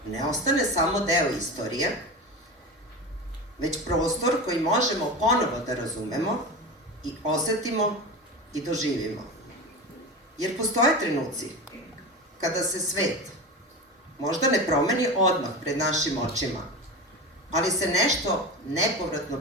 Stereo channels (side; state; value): both; normal; correlation 0.26